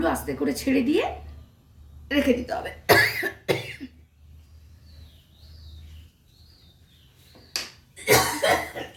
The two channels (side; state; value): both; identical; correlation 1.00